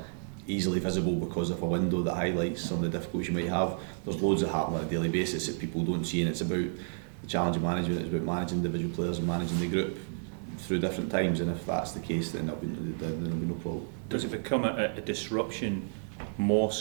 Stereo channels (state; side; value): silent; left; digital silence